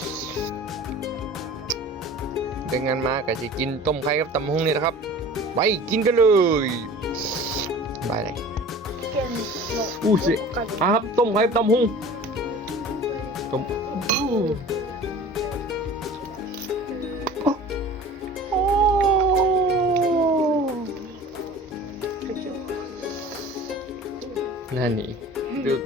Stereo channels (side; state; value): both; normal; correlation 0.42